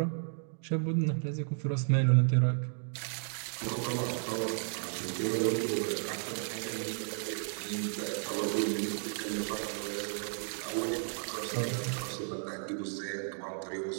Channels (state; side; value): silent; left; digital silence